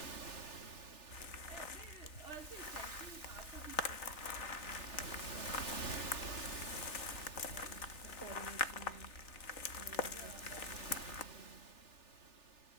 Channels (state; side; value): late; right; 3.4 ms